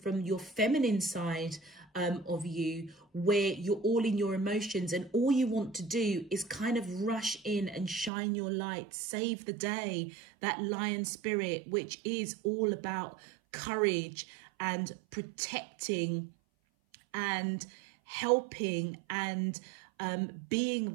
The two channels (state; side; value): drops out; left; at 8.1 s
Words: your feminine side of you, where you're all in your emotions and all you want to do is kind of rush in and shine your light, save the day, that lion spirit, which is all about courage and protecting and helping and being